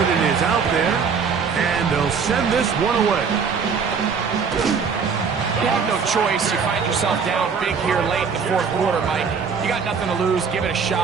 is out there, and they'll send this one away. You have no choice. You find yourself down big here late in the fourth quarter, Mike. You got nothing to lose. Give it a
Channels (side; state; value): left; quieter; 5.9 dB